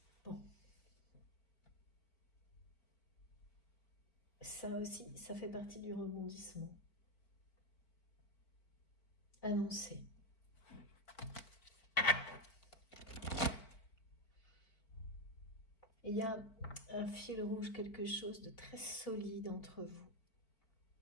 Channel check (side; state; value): right; late; 4.5 ms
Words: Bon. Ça aussi, ça fait partie du rebondissement. Annoncé. Il y a un fil rouge, quelque chose de très solide entre vous.